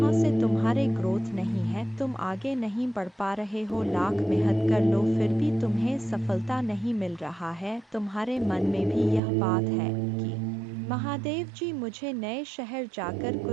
से तुम्हारे ग्रोथ नहीं है, तुम आगे नहीं बढ़ पा रहे हो। लाख मेहनत कर लो फिर भी तुम्हें सफलता नहीं मिल रहा है। तुम्हारे मन में भी यह बात है कि महादेव जी मुझे नए शहर जाकर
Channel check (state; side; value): drops out; left; at 9.2 s